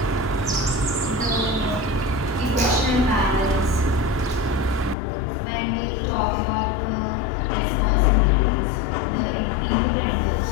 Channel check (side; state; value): right; drops out; at 5.0 s